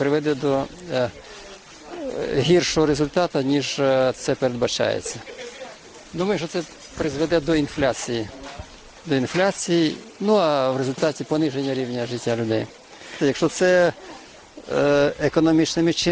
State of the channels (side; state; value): both; identical; correlation 1.00